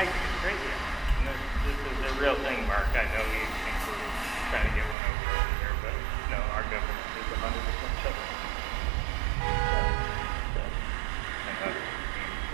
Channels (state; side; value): drops out; left; at 5.0 s